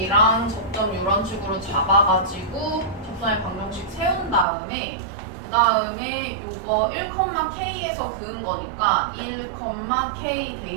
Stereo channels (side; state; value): left; drops out; at 4.5 s